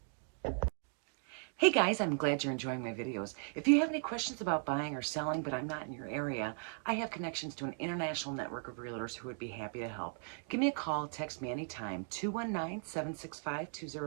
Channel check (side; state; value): left; silent; 53 dB below the other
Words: Hey guys, I'm glad you're enjoying my videos. If you have any questions about buying or selling, but I'm not in your area, I have connections to an international network of realtors who would be happy to help. Give me a call, text me anytime,